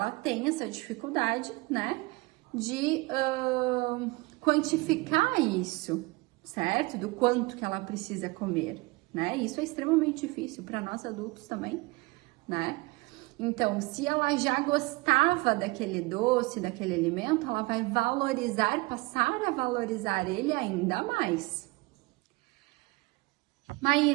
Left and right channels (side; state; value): left; quieter; 24.1 dB